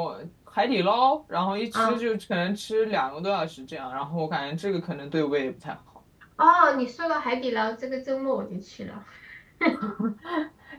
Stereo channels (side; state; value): both; identical; correlation 1.00